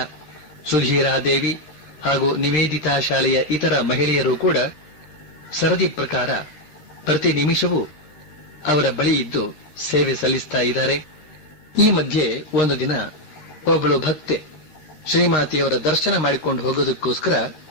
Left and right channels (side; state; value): right; late; 13 ms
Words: ಸುಧೀರಾದೇವಿ ಹಾಗೂ ನಿವೇದಿತಾ ಶಾಲೆಯ ಇತರ ಮಹಿಳೆಯರು ಕೂಡ ಸರದಿ ಪ್ರಕಾರ ಪ್ರತಿ ನಿಮಿಷವೂ ಅವರ ಬಳಿ ಇದ್ದು ಸೇವೆ ಸಲ್ಲಿಸ್ತಾ ಇದ್ದಾರೆ. ಈ ಮಧ್ಯೆ ಒಂದು ದಿನ ಒಬ್ಬಳು ಭಕ್ತೆ ಶ್ರೀಮಾತೆಯವರ ದರ್ಶನ ಮಾಡಿಕೊಂಡು ಹೋಗೋದಕ್ಕೋಸ್ಕರ